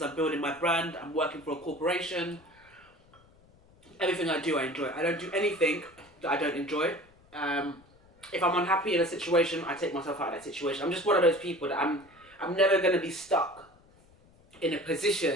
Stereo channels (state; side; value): noise; left; rumble, 29 dB below the sound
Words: I'm building my brand, I'm working for a corporation. Everything I do, I enjoy. I don't do anything that I don't enjoy. If I'm unhappy in a situation, I take myself out of that situation. I'm just one of those people that I'm never going to be stuck in a